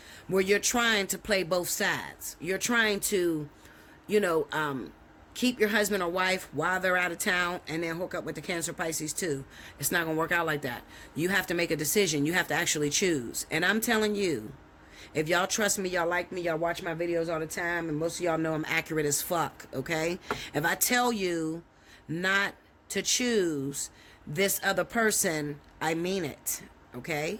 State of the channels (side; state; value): both; identical; correlation 1.00